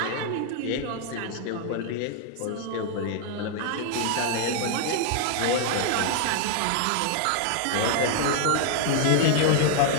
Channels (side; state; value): both; different; correlation 0.00